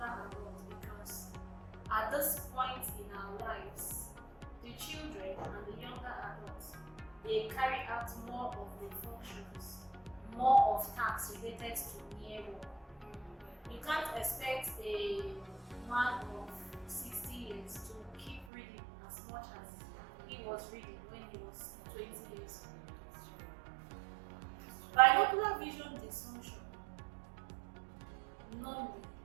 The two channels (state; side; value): drops out; left; at 18.4 s